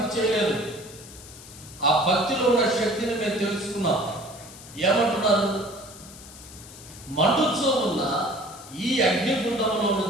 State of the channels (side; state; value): left; noise; hiss, 17 dB below the sound